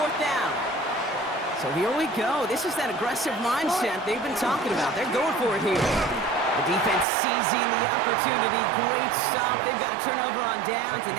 down. So here we go. This is that aggressive mindset they've been talking about. They're going for it here. The defense seizing the opportunity. Great stop. They've got a turnover on downs, and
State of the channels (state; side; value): drops out; left; at 7.1 s